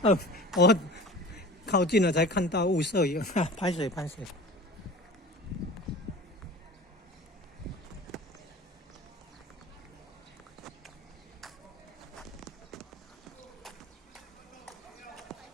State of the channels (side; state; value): both; normal; correlation 0.40